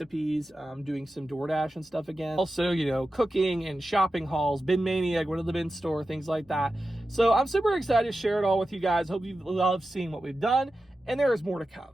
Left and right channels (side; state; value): both; normal; correlation 0.92